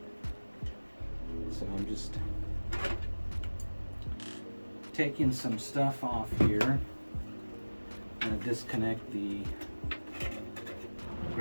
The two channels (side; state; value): both; inverted; correlation -1.00